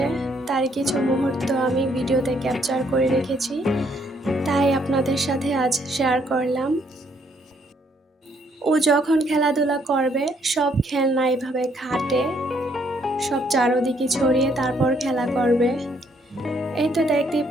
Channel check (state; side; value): normal; both; correlation 0.69